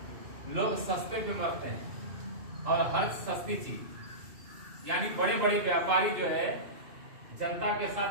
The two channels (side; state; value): left; late; 2.6 ms